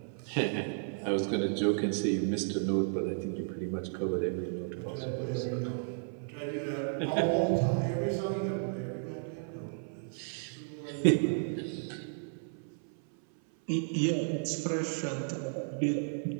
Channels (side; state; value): left; silent; 56 dB below the other